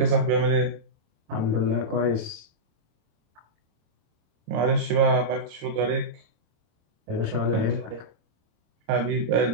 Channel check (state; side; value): late; left; 26 ms